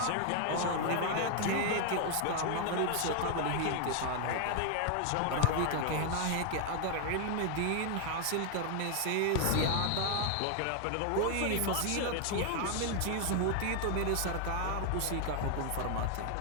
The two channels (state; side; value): different; both; correlation 0.00